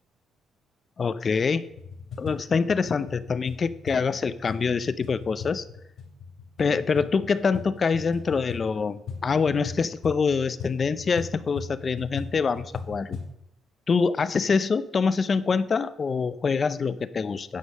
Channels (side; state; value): right; quieter; 4.9 dB